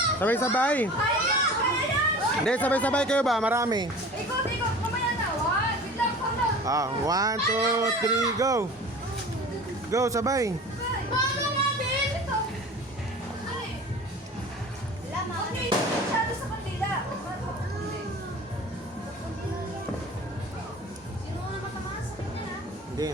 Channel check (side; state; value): both; normal; correlation 0.40